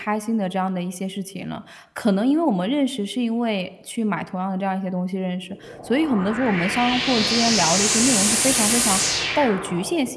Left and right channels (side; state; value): both; identical; correlation 1.00